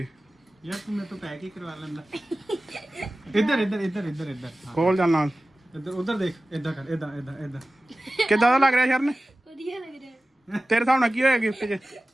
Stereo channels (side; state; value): both; normal; correlation 0.96